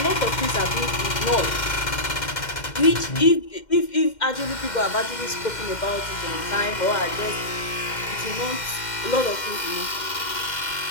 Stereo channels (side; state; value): right; late; 2.1 ms